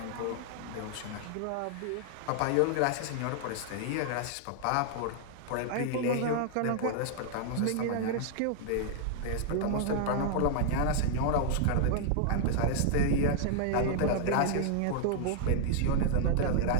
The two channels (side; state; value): both; different; correlation 0.00